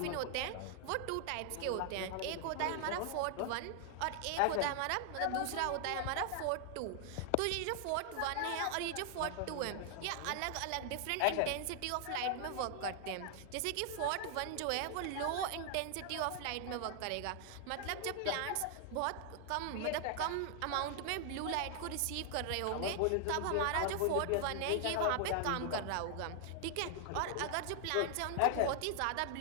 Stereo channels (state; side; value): different; both; correlation 0.00